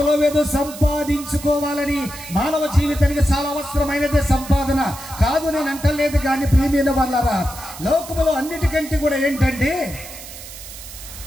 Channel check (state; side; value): noise; right; hiss, 14 dB below the sound